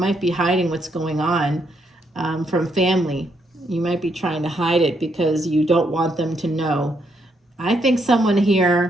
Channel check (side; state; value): both; normal; correlation 0.76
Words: be hiding what's going on from family. You might be trying to hide it because you don't want them to know. I think someone